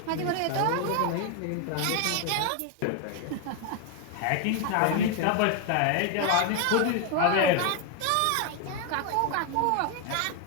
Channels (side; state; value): both; different; correlation 0.01